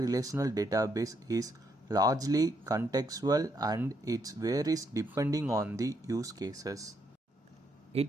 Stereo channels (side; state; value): both; normal; correlation 0.75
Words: database is largely contextual and it varies depending on the use cases.